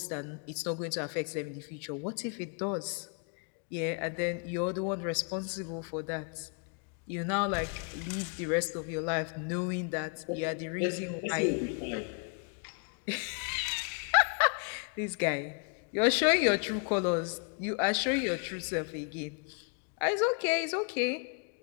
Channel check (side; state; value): right; quieter; 38.9 dB